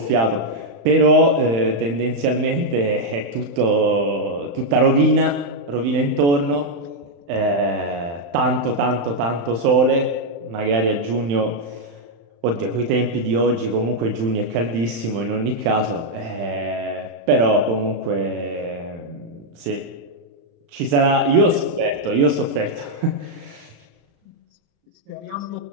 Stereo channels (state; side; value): late; left; 35 ms